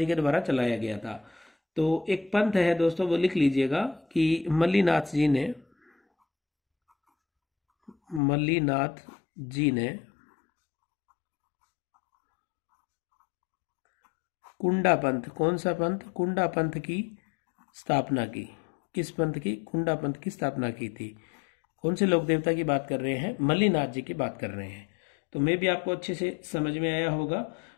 के द्वारा चलाया गया था। तो एक पंथ है दोस्तों, वो लिख लीजिएगा कि मल्लीनाथ जी ने कुंडा पंथ, कौन सा पंथ, कुंडा पंथ की स्थापना की। किस पंथ की, कुंडा पंथ की स्थापना की थी। कौन से लोक देवता की बात कर रहे हैं, मल्लीनाथ जी की बात कर रहे हैं। तो मैं भी आपको अच्छे से समझ में आया होगा।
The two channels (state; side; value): drops out; right; at 8.2 s